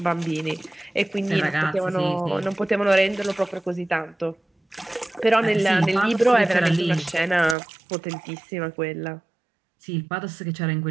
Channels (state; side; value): drops out; left; at 7.6 s